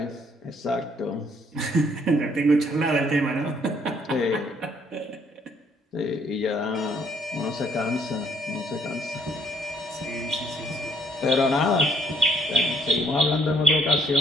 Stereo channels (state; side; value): normal; both; correlation 0.66